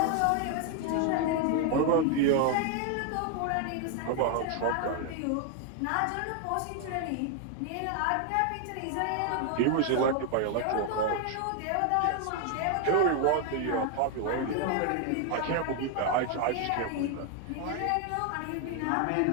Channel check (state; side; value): different; both; correlation 0.00